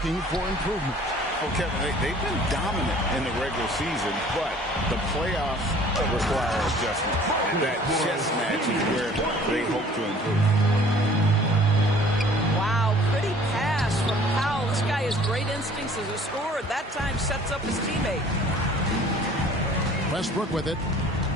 for improvement? Well, Kevin, they've been dominant in the regular season, but the playoffs require adjustment. And that chess match is where they hope to improve. Wow, pretty pass from Powell. This guy has great instincts as a scorer. That time sets up his teammate. Westbrook with it.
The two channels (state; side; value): normal; both; correlation 0.52